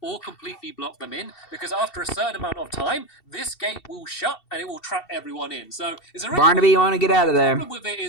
or completely block them in, because after a certain amount of time, this gate will shut, and it will trap everyone in. So, Barnaby, you want to get out of there. The problem with it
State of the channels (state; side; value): late; right; 2.7 ms